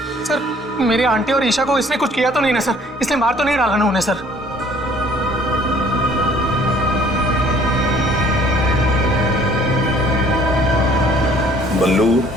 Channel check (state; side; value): normal; both; correlation 0.57